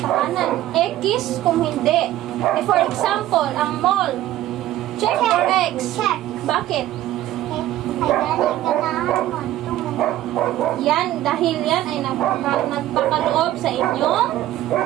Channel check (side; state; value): left; quieter; 14.1 dB